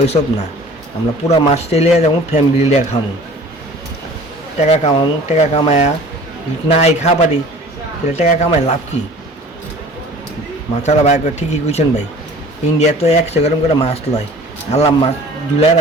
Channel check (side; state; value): both; normal; correlation 0.46